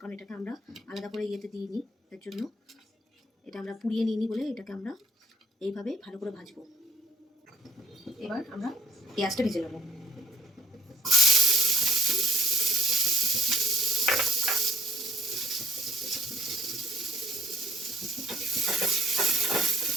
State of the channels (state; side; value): normal; both; correlation 0.59